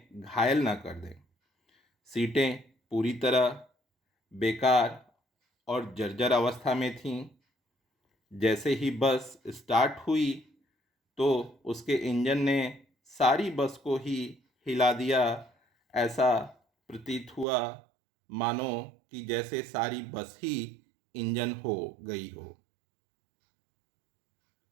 घायल न कर दें। सीटें पूरी तरह बेकार और जर्जर अवस्था में थीं। जैसे ही बस स्टार्ट हुई तो उसके इंजन ने सारी बस को ही हिला दिया। ऐसा प्रतीत हुआ मानो कि जैसे सारी बस ही इंजन हो गई हो।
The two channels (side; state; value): left; drops out; at 17.4 s